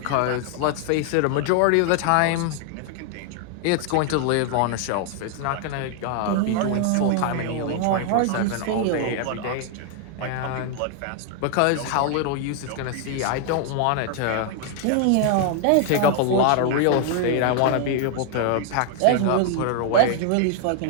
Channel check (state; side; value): different; both; correlation 0.00